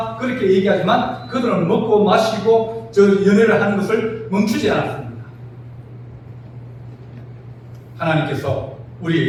그렇게 얘기하지만 그들은 먹고 마시고 저 연애를 하는 것을 멈추지 않았습니다. 하나님께서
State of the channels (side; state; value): both; identical; correlation 1.00